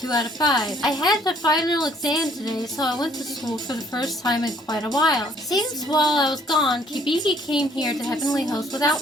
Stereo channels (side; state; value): both; normal; correlation 0.61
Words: 2 out of 5. I had the final exam today, so I went to school for the first time in quite a while. Seems while I was gone, Kibiki came here to Heavenly Host